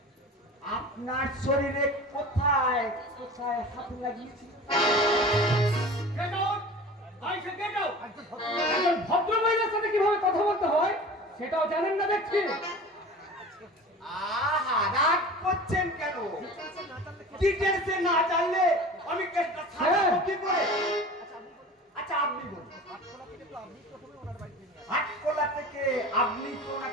আপনার শরীরে কোথায় কোথায় হাত লাগিয়েছিল? একজন ভদ্র মহিলার সাথে কিভাবে কথা বলতে হয় সেটাও জানেন না দেখছি। আহা, রাগ করছেন কেন? ডিটেলসে না জানলে আমি কেসটা সাজাবো কি করে? আচ্ছা আপনি বলুন, হাটকোলা থেকে আপনি তো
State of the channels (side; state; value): both; normal; correlation 0.38